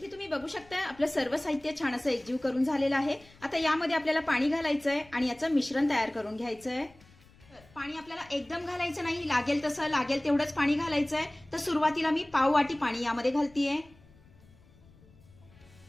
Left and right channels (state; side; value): noise; left; rumble, 26 dB below the sound